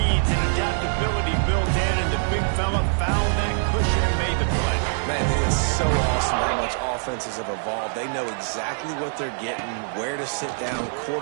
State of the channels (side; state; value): left; silent; digital silence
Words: and adaptability built in, and the big fella found that cushion and made the play. Man, it is so awesome how much offenses have evolved. They know exactly what they're getting, where to sit down,